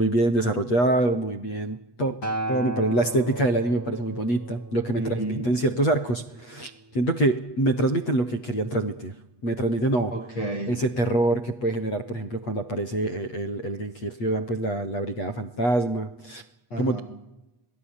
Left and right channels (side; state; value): right; late; 8.3 ms